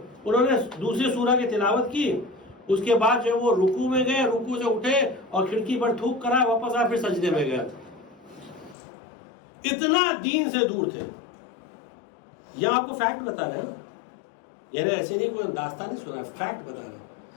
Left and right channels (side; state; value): right; drops out; at 8.8 s